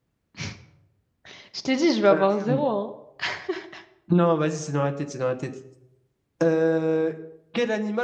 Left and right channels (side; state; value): both; identical; correlation 1.00